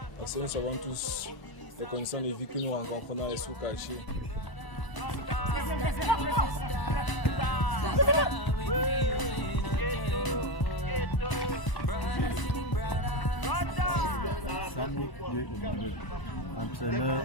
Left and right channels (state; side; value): late; right; 1.0 ms